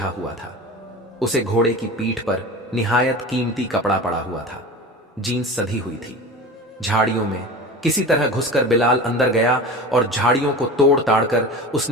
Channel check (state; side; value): normal; both; correlation 0.32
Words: हुआ था। उसे घोड़े की पीठ पर निहायत कीमती कपड़ा पड़ा हुआ था, जीन्स सधी हुई थी। झाड़ियों में किसी तरह घुसकर बिलाल अंदर गया और झाड़ियों को तोड़ ताड़ कर